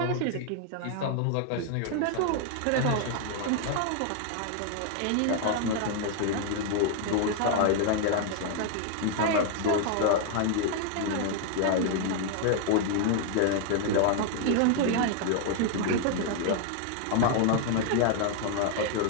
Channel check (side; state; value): both; different; correlation 0.00